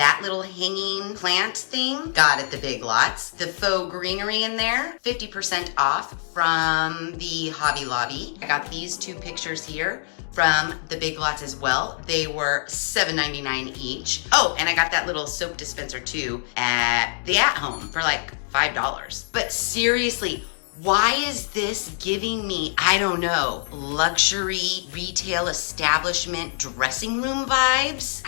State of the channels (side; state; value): right; silent; digital silence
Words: little hanging plant thing, got at the Big Lots. The faux greenery in there, 50% off from the Hobby Lobby. I got these two pictures here from the Big Lots as well. They were $7.99 each. Oh, and I got that little soap dispenser too at the At Home for like $5. But seriously, why is this giving me, I don't know, luxury retail establishment dressing room vibes?